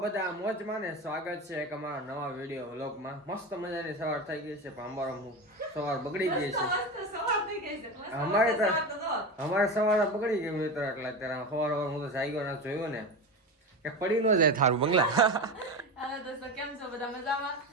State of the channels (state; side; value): normal; both; correlation 0.23